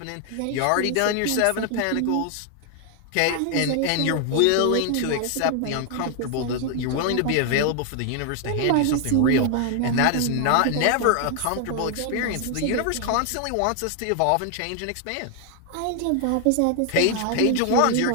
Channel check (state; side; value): different; both; correlation 0.00